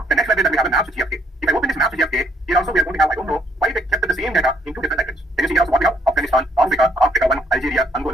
the next library that we have is maps to GFK. If I open this maps to GFK, here also we are going to have, I don't know why they kept the same data in 2 different libraries. Can you see here also what we have? Afghanistan, Africa 1, Algeria,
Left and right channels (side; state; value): both; normal; correlation 0.68